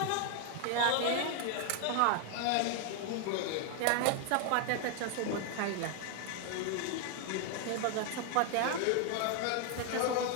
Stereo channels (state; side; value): different; both; correlation 0.00